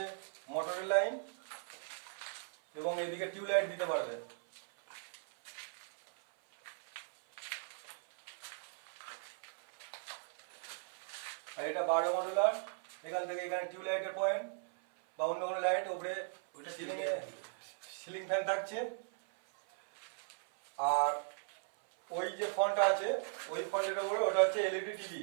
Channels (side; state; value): left; silent; 52 dB below the other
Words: মোটরের লাইন এবং এদিকে টিউবলাইট দিতে পারবে। আর এটা 12 মডুলার, এখান থেকে এখানে টিউবলাইটের পয়েন্ট বা অন্য কোনো লাইট উপরে সিলিং ফ্যান থাকছে। আর ওই যে ফোনটা আছে ওই ফোনটার উপরে ওটা হচ্ছে এলইডি টিভি।